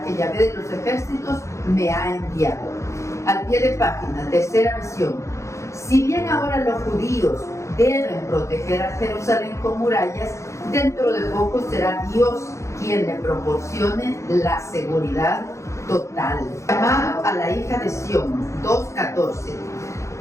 que Yahvé de los ejércitos me ha enviado. Al pie de página, tercera visión. Si bien ahora los judíos deben proteger a Jerusalén con murallas, dentro de poco será Dios quien le proporcione la seguridad total. Llamado a la hija de Sión, 2:14.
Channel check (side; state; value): right; late; 0.14 ms